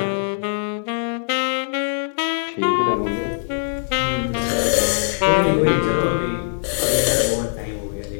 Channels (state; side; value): silent; right; digital silence